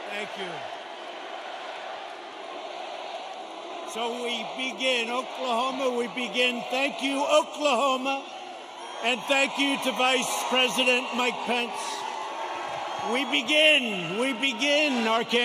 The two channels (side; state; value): both; identical; correlation 1.00